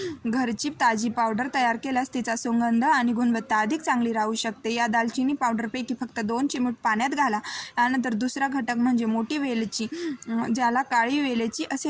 घरची ताजी पावडर तयार केल्यास तिचा सुगंध आणि गुणवत्ता अधिक चांगली राहू शकते. या दालचिनी पावडरपैकी फक्त 2 चिमूट पाण्यात घाला. यानंतर दुसरा घटक म्हणजे मोठी वेलची, ज्याला काळी वेलची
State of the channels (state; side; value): identical; both; correlation 1.00